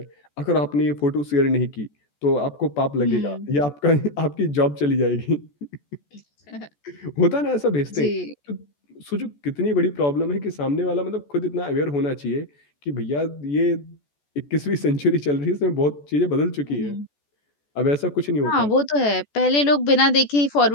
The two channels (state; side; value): late; right; 14 ms